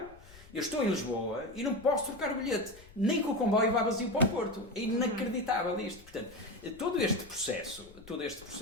eu estou em Lisboa e não posso trocar o bilhete, nem que o comboio vá vazio para o Porto. É inacreditável isto. Portanto, todo este processo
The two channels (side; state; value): left; noise; rumble, 22 dB below the sound